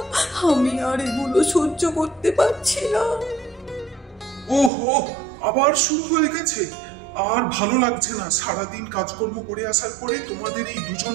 আমি আর এগুলো সহ্য করতে পারছি না। ওহো, আবার শুরু হয়ে গেছে। আর ভালো লাগছে না, সারাদিন কাজকর্ম করে আসার পরে তোমাদের এই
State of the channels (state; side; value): drops out; left; at 4.7 s